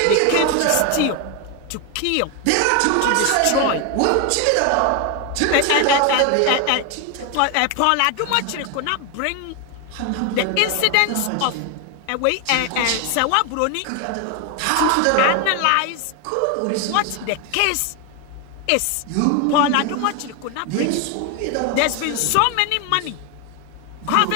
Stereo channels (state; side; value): different; both; correlation 0.01